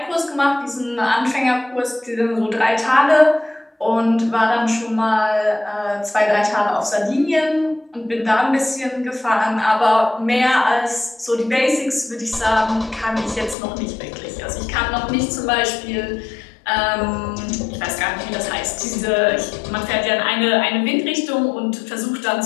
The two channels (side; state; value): right; drops out; at 13.6 s